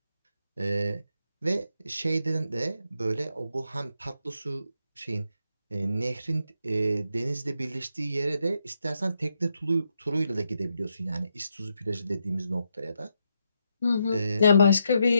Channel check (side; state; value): both; inverted; correlation -0.81